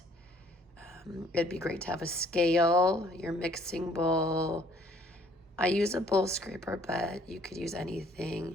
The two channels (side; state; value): both; normal; correlation 0.61